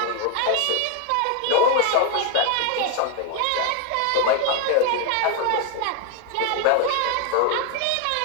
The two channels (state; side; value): different; both; correlation 0.01